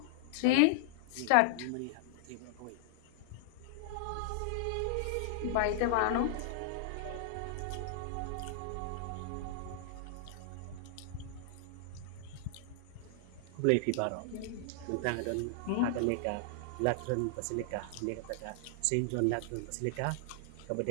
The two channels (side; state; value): both; different; correlation -0.01